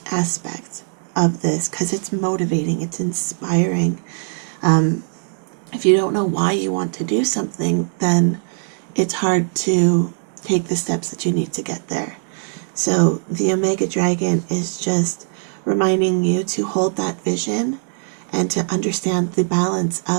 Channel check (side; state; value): left; silent; digital silence